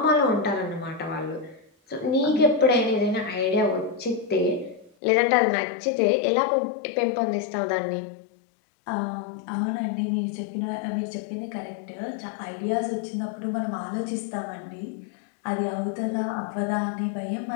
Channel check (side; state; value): right; drops out; at 4.9 s